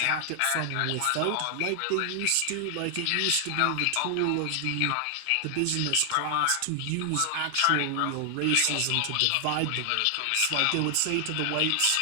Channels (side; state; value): both; different; correlation 0.00